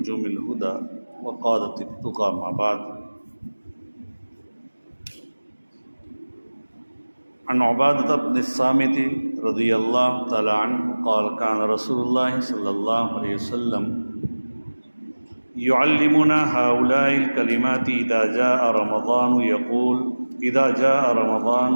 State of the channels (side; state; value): both; inverted; correlation -1.00